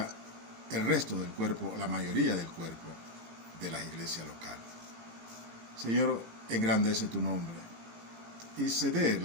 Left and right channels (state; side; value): late; left; 18 ms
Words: el resto del cuerpo, la mayoría del cuerpo de la iglesia local. Señor, engrandece tu nombre y se dé